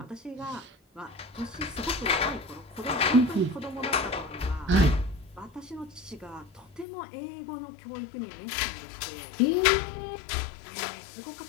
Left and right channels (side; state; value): right; drops out; at 6.9 s